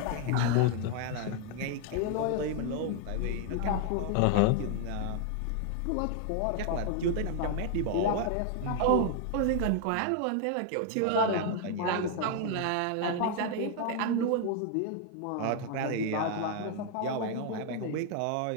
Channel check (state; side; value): different; both; correlation 0.00